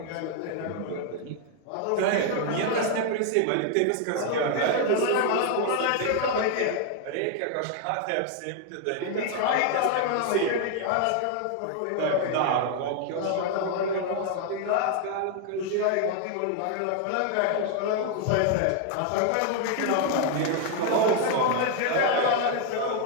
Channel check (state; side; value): different; both; correlation 0.00